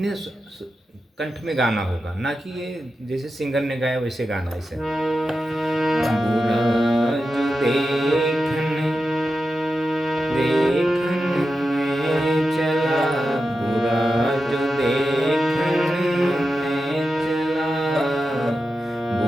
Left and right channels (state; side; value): normal; both; correlation 0.90